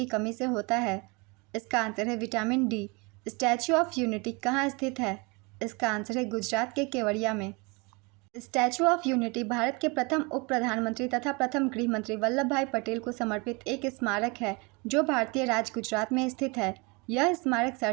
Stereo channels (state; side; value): quieter; left; 28.7 dB